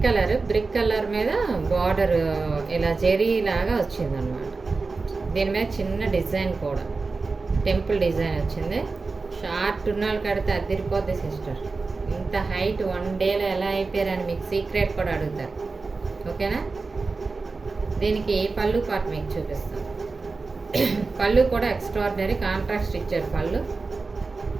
కలర్ మీద బార్డర్ ఇలా జెరీ లాగా వచ్చిందనమాట. దీని మీద చిన్న డిజైన్ కూడా టెంపుల్ డిజైన్ వచ్చింది. షార్ట్ ఉన్న వాళ్ళు కడితే అదిరిపోద్ది సిస్టర్. ఇంత హైట్ 1 డేలో ఎలా అయిపోయారని మీకు సీక్రెట్ కూడా అడుగుతారు. ఓకేనా? దీనికి పళ్ళు పార్ట్ మీకు చూపిస్తాను. పళ్ళు కూడా ఎక్స్ట్రాడినరీ కాంట్రాస్ట్ ఇచ్చారు.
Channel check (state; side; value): quieter; left; 4.0 dB